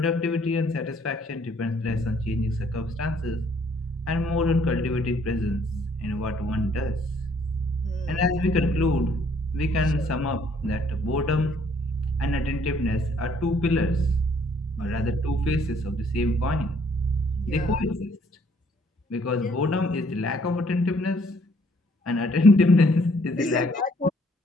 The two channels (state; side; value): normal; both; correlation 0.64